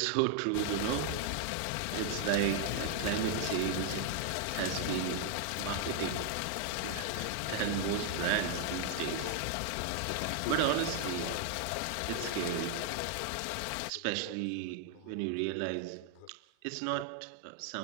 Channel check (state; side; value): different; both; correlation 0.00